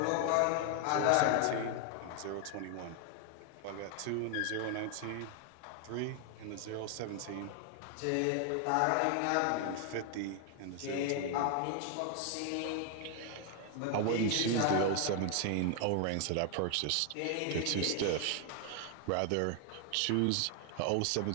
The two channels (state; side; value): different; both; correlation 0.00